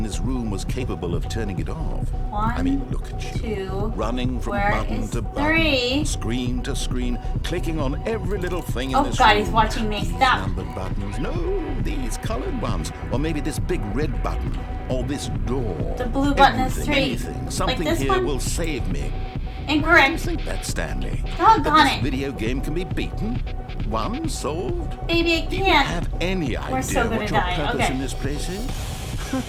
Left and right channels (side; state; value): both; identical; correlation 1.00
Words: this room was capable of turning it off? I mean, look at you. 2. Running from Where button is to button, 3? screen to screen, clicking on every little thing in Oh this God, room. he's watching me. These Stop. numbered buttons. No, these colored ones. Or maybe this big red button. Or this door. The blue button is Everything, 3. anything. Like Something this here one? will save me. I Incorrect. think that, Stanley. Doggone that this it. video game can be beaten. One solved. Baby, I Do you can't. have any We're idea so gonna what your die. purpose Okay. in this place is?